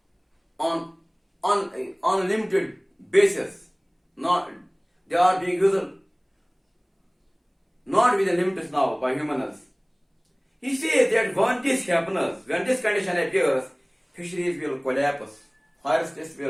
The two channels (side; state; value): both; identical; correlation 1.00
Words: on unlimited basis. They are being used not with the limits now by humans. He says that when this happens, when this condition appears, fisheries will collapse, forests